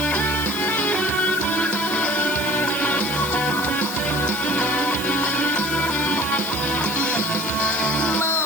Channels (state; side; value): noise; left; hiss, 9 dB below the sound